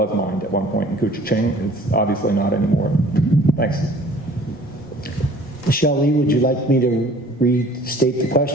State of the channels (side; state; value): both; normal; correlation 0.51